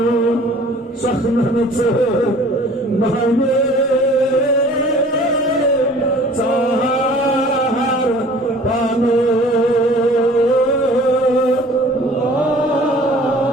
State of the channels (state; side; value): normal; both; correlation 0.49